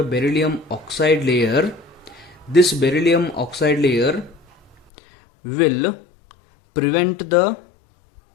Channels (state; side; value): drops out; right; at 4.8 s